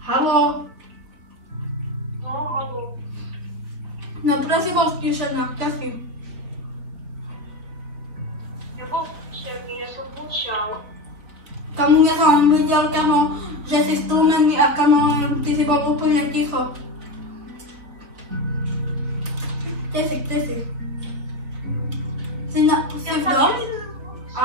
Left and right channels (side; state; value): left; late; 4.0 ms